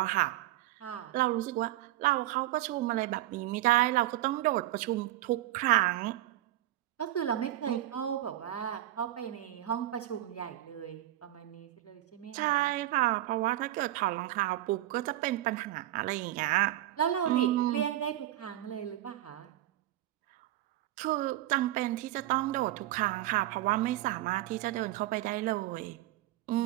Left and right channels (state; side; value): quieter; left; 14.9 dB